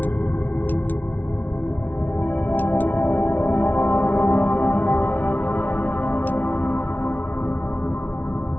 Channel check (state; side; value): late; right; 0.080 ms